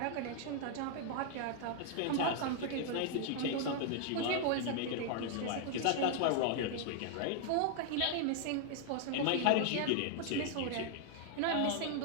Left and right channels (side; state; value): both; different; correlation 0.00